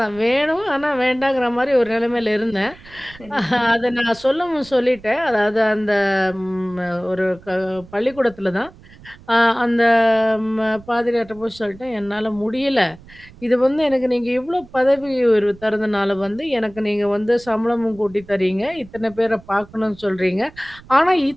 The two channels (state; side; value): noise; right; rumble, 22 dB below the sound